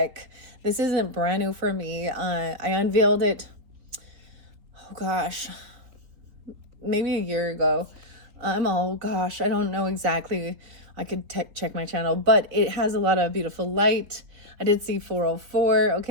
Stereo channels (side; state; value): left; late; 3.8 ms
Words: This isn't brand new for me. I unveiled it, oh gosh, maybe a year ago. Oh gosh, I don't know exactly. I could check my channel, but it has a lot of beautiful light. I did see 404,